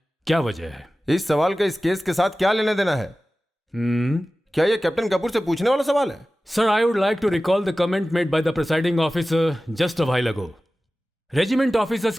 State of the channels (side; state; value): both; normal; correlation 0.96